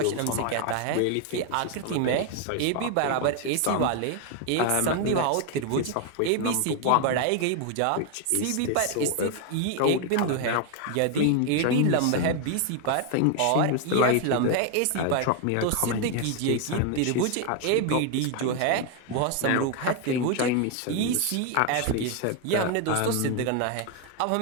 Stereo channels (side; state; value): both; different; correlation 0.01